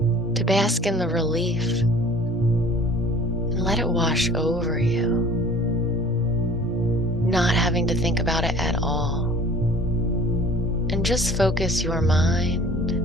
bask in the relief and let it wash over you, not having to think about it at all. And just focus your mind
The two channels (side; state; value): both; normal; correlation 0.48